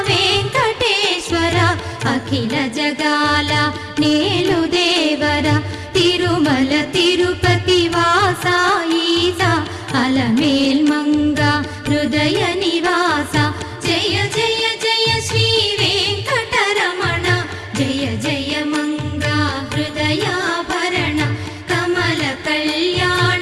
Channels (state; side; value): identical; both; correlation 1.00